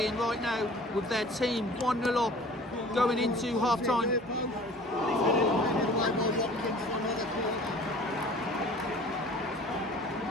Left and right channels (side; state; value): both; normal; correlation 0.46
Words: right now with their team 1-0 up going into half-time.